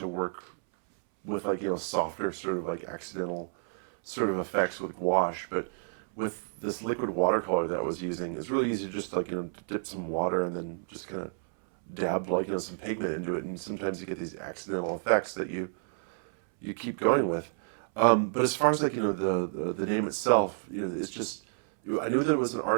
work with like, softer sort of like accidental sort of effects with gouache, but with this liquid watercolor that I was using, it's really easy to just like, dip some water and then just kind of dab like, some pigment into it, and sometimes you get these accidental effects that you keep going with. But as far as like, the name itself, it's just, I knew that it was an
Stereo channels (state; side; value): silent; left; 58 dB below the other